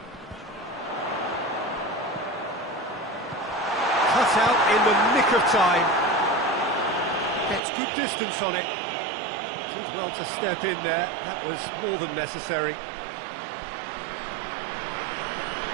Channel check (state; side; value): drops out; left; at 7.6 s